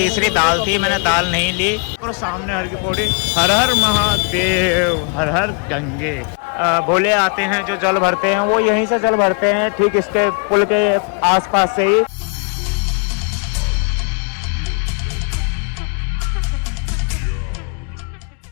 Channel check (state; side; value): quieter; right; 37.5 dB